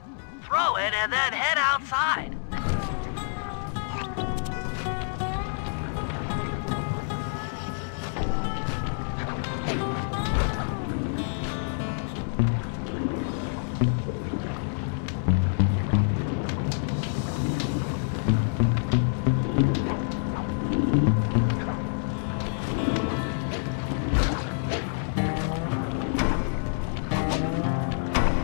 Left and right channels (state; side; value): silent; right; 60 dB below the other